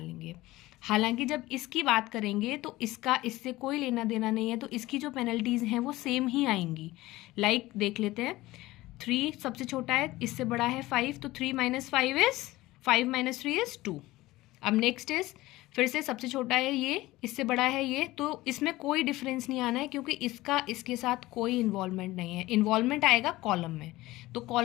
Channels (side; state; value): right; quieter; 18.2 dB